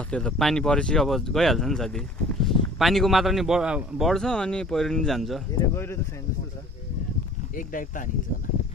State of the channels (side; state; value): both; normal; correlation 0.48